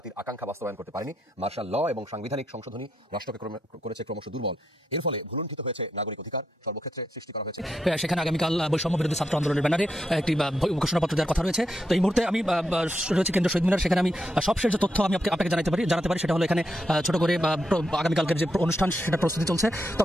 আকাঙ্ক্ষা বাস্তবায়ন করতে পারেনি। মার্শাল ল এবং সাংবিধানিক সংশোধনী রাষ্ট্রকে করেছে ক্রমশ দুর্বল। এর ফলে ভুলুণ্ঠিত হয়েছে নাগরিক অধিকার, সর্বক্ষেত্রে সৃষ্টি করা হয়েছে। সেখানে আগামীকাল বৈষম্য বিরোধী ছাত্র আন্দোলনের ব্যানারে একটি ঘোষণাপত্র দেওয়ার কথা রয়েছে। তো এই মুহূর্তে আমি রয়েছে কেন্দ্রীয় শহীদ মিনার, সেখানে আমি সবশেষ যে তথ্য আমি আপনাকে জানাতে পারি সেটা হলো এখানে ছোট করে আগামীকালকের যে অনুষ্ঠান সেটা প্রস্তুতি চলছে।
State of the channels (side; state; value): both; normal; correlation 0.82